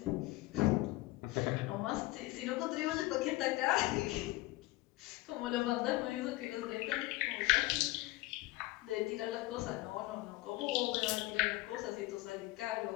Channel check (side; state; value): right; quieter; 19.2 dB